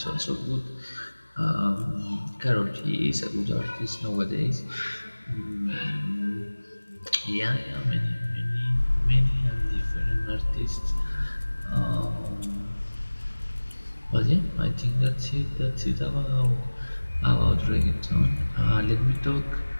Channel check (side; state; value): both; inverted; correlation -1.00